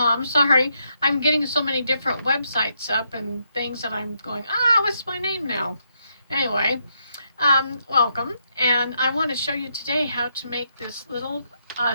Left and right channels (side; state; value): both; inverted; correlation -0.78